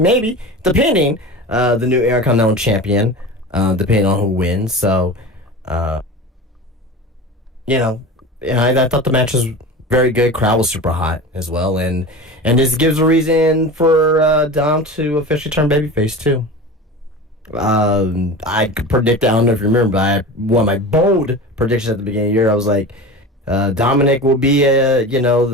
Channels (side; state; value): both; normal; correlation 0.32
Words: depending, the new Intercontinental champion, depending on who wins. So, I thought the match was very good. Crowd was super hot as well, and this gives a reason for Dom to officially turn babyface too. I could predict. I don't know if you remember, but one of my bold predictions at the beginning of the year, I was like, Dominic will be